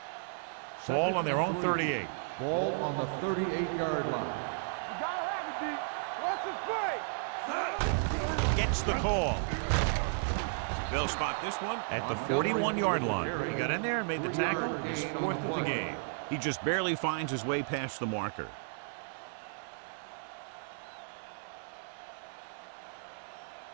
Ball on their own 38. Ball on the 38-yard line. You gotta have it, D. What's the play? Gets the call. They'll spot this one at the 41-yard line. He got in there and made the tackle. His 4th of the game. He just barely finds his way past the marker.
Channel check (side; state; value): left; silent; digital silence